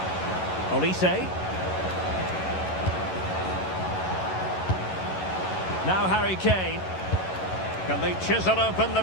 Olise. Now Harry Kane. Can they chisel open the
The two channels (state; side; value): late; right; 11 ms